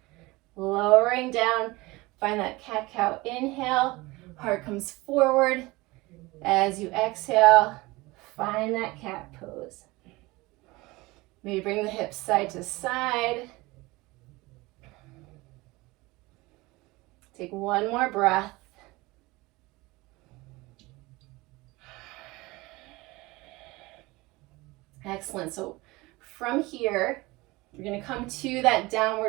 Lowering down, find that cat-cow inhale. Heart comes forward. As you exhale, find that cat pose. Maybe bring the hips side to side. Take 1 more breath. Excellent. So from here, you're going to come to that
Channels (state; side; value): quieter; left; 21.9 dB